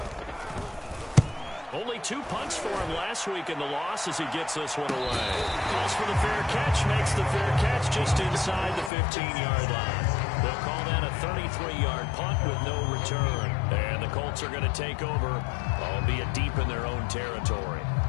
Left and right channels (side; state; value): right; drops out; at 8.9 s